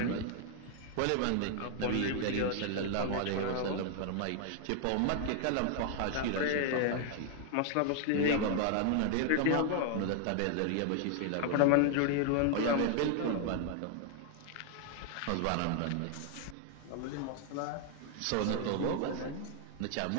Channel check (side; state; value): both; different; correlation 0.00